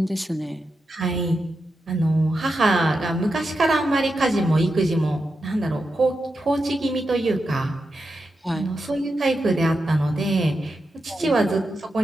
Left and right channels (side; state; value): both; normal; correlation 0.88